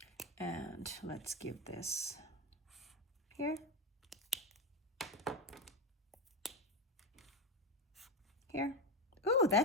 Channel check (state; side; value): normal; both; correlation 0.14